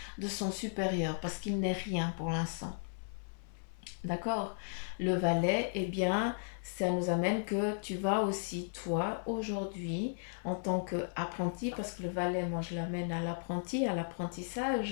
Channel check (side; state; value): right; silent; 54 dB below the other